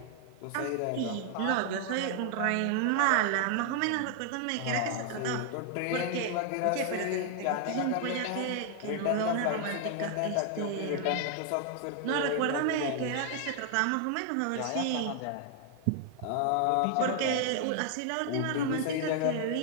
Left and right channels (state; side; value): different; both; correlation 0.00